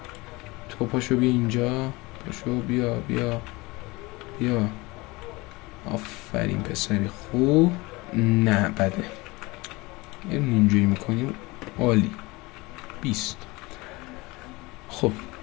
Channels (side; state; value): right; quieter; 23.2 dB